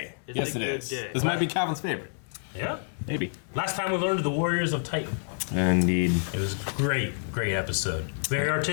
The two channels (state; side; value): silent; right; 59 dB below the other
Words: Yes, it is. This might be Calvin's favorite. Yeah. Maybe. Last time we learned the Warriors of Titan. Indeed. It was a great episode. Very